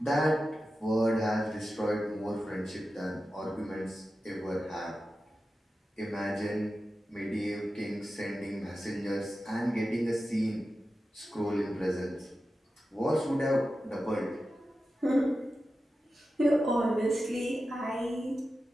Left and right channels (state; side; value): normal; both; correlation 0.92